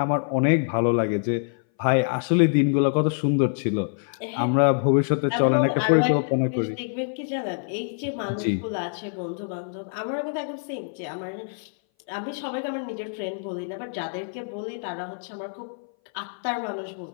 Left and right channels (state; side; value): silent; right; 58 dB below the other